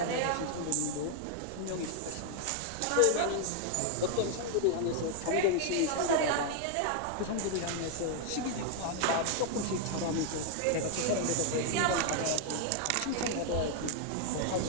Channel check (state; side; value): different; both; correlation 0.00